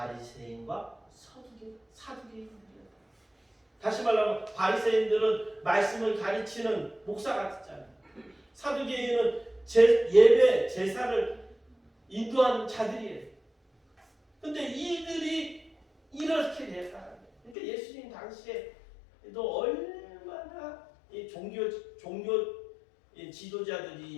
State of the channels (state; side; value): drops out; right; at 17.6 s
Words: 사두개인들이었다. 다시 말하면 바리새인들은 말씀을 가르치는 목사 같았잖아요. 사두개인은 예배, 제사를 인도하는 자들이에요. 근데 이들이 이렇게 됐다. 그러니까 예수님 당시에도 얼마나 이 종교